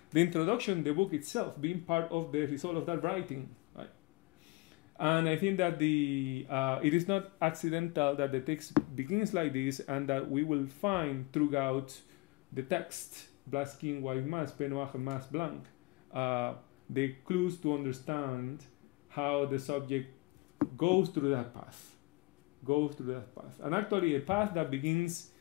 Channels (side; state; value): right; quieter; 22.8 dB